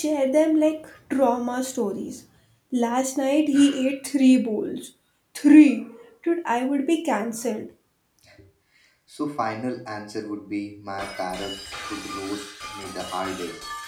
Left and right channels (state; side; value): identical; both; correlation 1.00